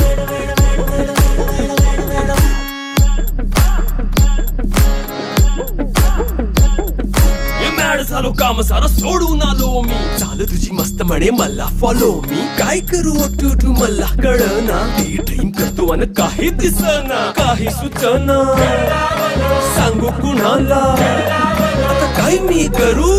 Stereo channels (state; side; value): identical; both; correlation 1.00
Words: झालो काम सारा सोडून आलो मी झालं तुझी मस्त म्हणे मला फॉलो मी काय करू टू मला कळना ती ड्रीम करतो आणि काही दिसना काही सुचना सांगू कुणाला आता काय मी करू